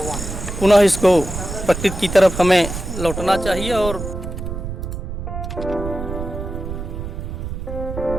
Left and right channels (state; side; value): noise; right; rumble, 6 dB below the sound